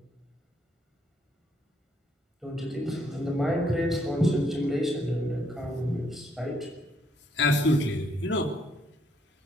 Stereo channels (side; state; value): both; normal; correlation 0.71